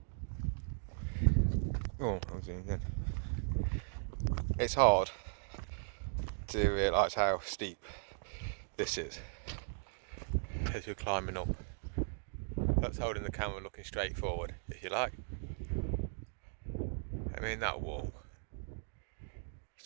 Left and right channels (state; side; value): silent; left; digital silence